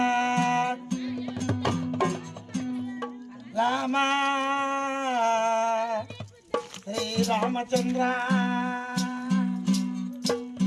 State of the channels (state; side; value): identical; both; correlation 1.00